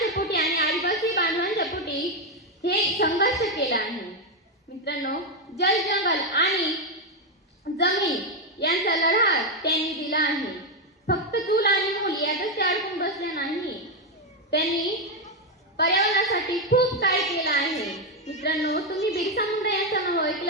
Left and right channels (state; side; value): normal; both; correlation 0.05